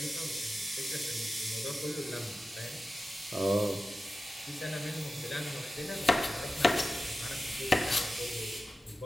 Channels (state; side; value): normal; both; correlation 0.93